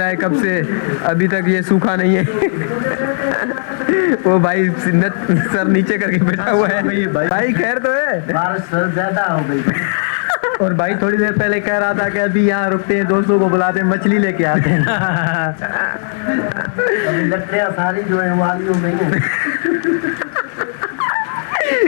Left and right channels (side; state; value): right; silent; 69 dB below the other